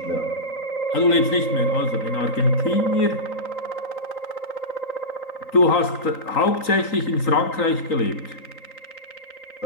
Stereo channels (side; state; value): right; late; 3.9 ms